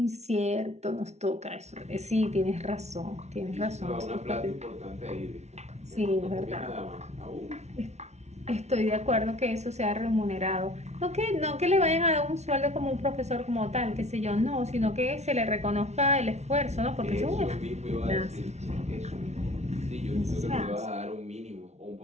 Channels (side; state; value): left; late; 0.32 ms